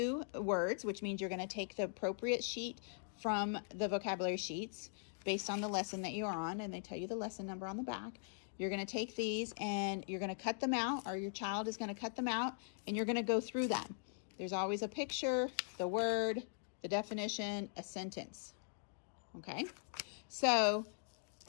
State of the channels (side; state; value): right; silent; digital silence